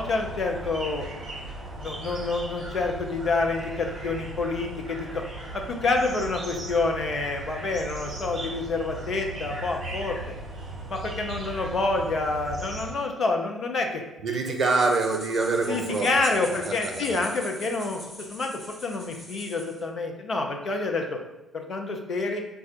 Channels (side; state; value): both; normal; correlation 0.65